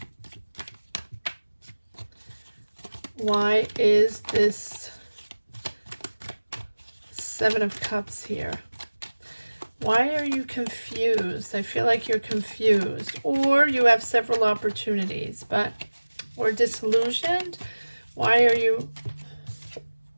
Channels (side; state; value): both; inverted; correlation -1.00